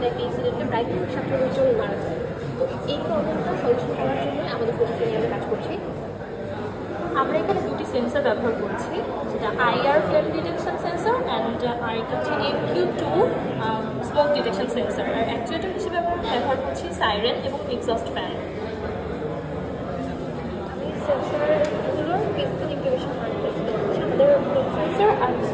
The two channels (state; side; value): identical; both; correlation 1.00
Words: একটা ইনসিডেন্টে প্রায় 17 জন মারা যায়। তো এই প্রবলেমটা সলিউশন করার জন্য আমাদের প্রযুক্তি নিয়ে আমরা কাজ করছি। আমরা এখানে দুটি সেন্সর ব্যবহার করছি, যেটা IR flame detection sensor and আরেকটা হচ্ছে MQ2 স্মোক ডিটেকশন সেন্সর। আর অ্যাকচুয়েটার হিসেবে আমরা ব্যবহার করছি সাইরেন এবং এক্সস্ট ফ্যান। আমি সেন্সরগুলোর ফিজিক্যাল ইন্টিগ্রেশন আমাদের সেন্সর আর